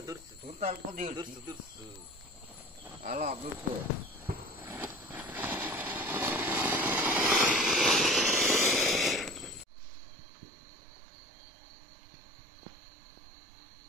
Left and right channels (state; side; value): drops out; left; at 9.7 s